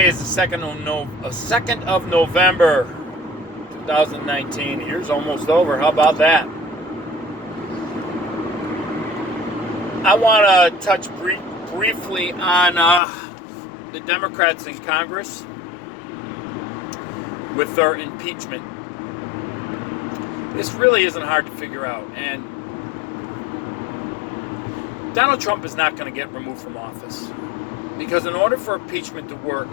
is the 2nd of November, 2019. The year's almost over. How about that? I want to touch briefly on the Democrats in Congress with their impeachment. This really isn't hard to figure out. And Donald Trump is not going to get removed from office. Because in order for impeachment to work,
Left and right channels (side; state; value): right; drops out; at 13.0 s